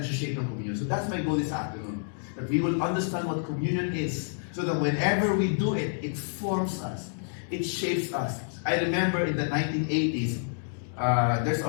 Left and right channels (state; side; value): silent; right; digital silence